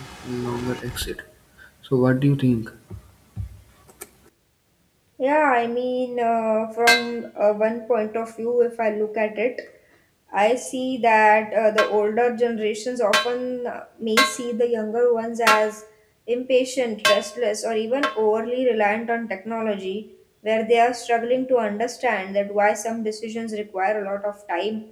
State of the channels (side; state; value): both; identical; correlation 1.00